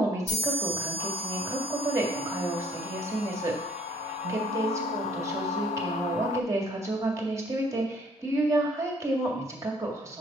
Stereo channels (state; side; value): normal; both; correlation 0.59